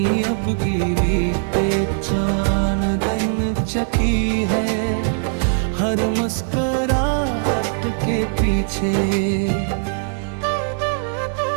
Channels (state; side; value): silent; left; digital silence